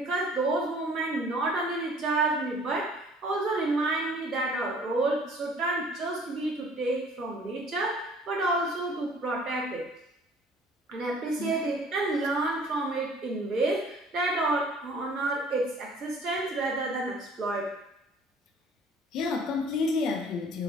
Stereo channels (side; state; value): both; normal; correlation 0.53